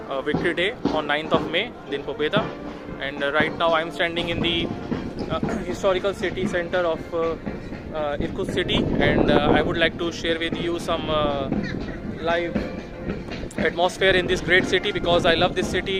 Victory Day on 9th of May, Din Pobeda. And right now I'm standing in the historical city center of Irkutsk city, and I would like to share with you some live atmosphere in this great city, because I love this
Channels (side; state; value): both; identical; correlation 1.00